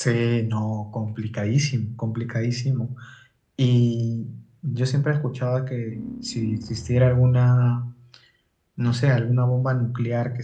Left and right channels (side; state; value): both; identical; correlation 1.00